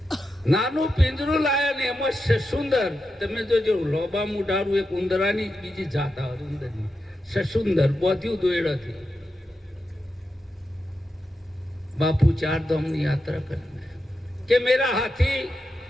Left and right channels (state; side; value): normal; both; correlation 0.88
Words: નાનું પિંજરું લાયા ને એમાં સસુંદર, તમે જોજો લોબા મુઢારું, એક ઉંદરાની બીજી જાત આવે ઉંદરની, સસુંદર બોધ્યું દોયડાથી. બાપુ 4 ધામની યાત્રા કરે કે મેરા હાથી.